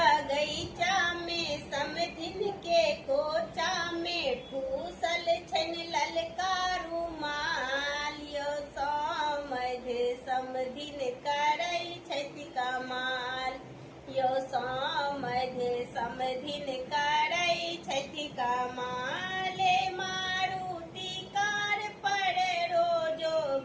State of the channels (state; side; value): identical; both; correlation 1.00